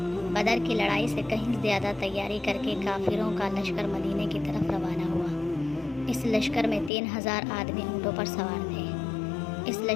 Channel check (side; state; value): right; drops out; at 6.9 s